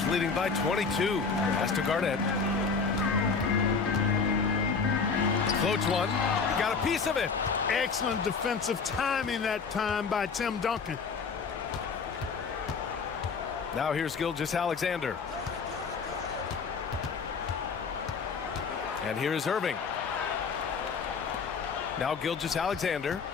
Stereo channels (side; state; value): right; quieter; 5.2 dB